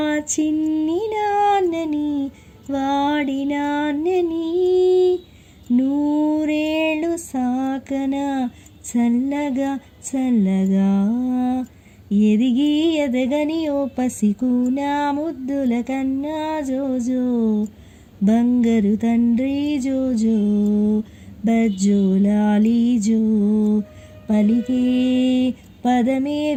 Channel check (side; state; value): both; identical; correlation 1.00